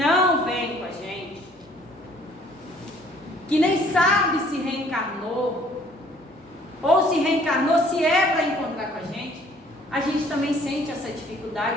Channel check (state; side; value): normal; both; correlation 0.58